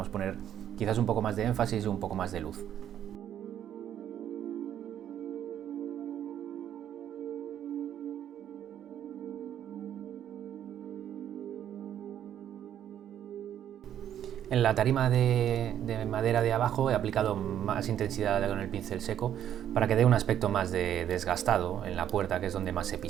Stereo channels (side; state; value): left; quieter; 10.3 dB